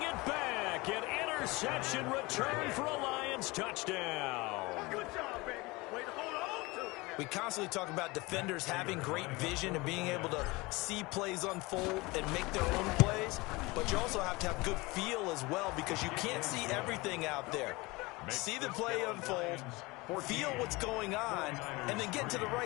it back. An interception return for a Lions touchdown. Good job, baby. Way to hold on to it. We constantly talk about defenders having great vision and being able to see plays unfold and make their own plays, but you also have to have good feel as well because you can't see everything out there. See the play unfold, feel what's going on, and then get to the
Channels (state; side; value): quieter; right; 23.3 dB